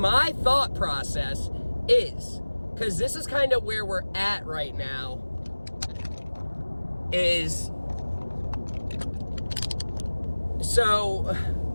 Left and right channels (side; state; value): both; inverted; correlation -1.00